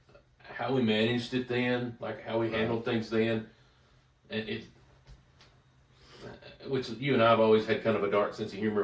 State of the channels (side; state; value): both; identical; correlation 1.00